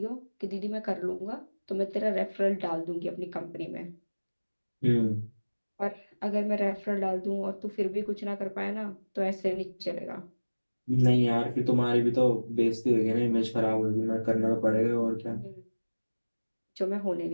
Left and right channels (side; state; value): both; inverted; correlation -1.00